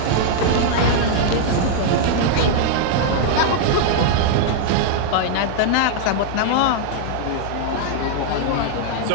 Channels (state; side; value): different; both; correlation -0.01